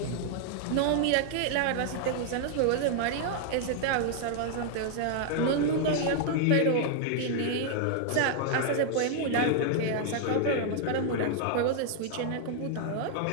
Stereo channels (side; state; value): both; different; correlation 0.00